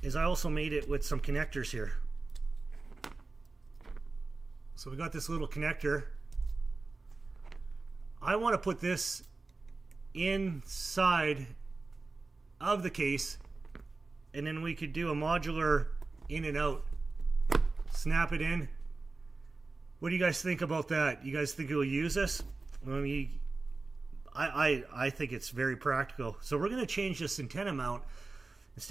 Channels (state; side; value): quieter; left; 3.7 dB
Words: is I also made it with some connectors here. So we got this little connector. I want to put this inside of the case, and then we could do a modular in and out. Snap it in. What do you guys think about that? You guys think it will use this? I think it's very practical. So we're going to change this antenna mount.